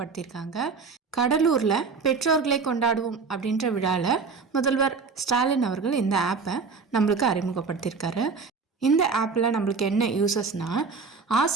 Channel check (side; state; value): left; quieter; 4.9 dB